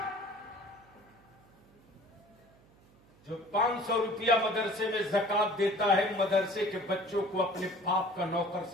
जो 500 रुपया मदरसे में ज़कात देता है, मदरसे के बच्चों को अपने बाप का नौकर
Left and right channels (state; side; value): noise; right; hum, 28 dB below the sound